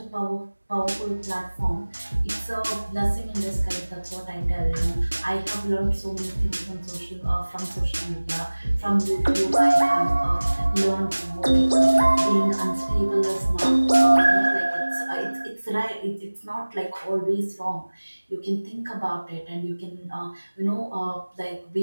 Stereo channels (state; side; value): inverted; both; correlation -1.00